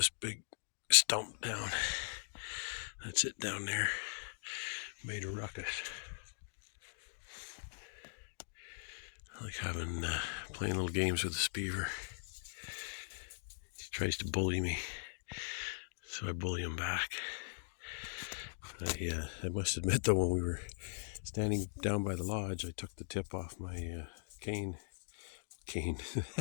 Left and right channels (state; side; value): silent; right; digital silence